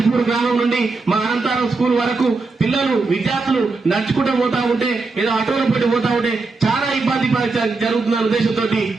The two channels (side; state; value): left; quieter; 3.9 dB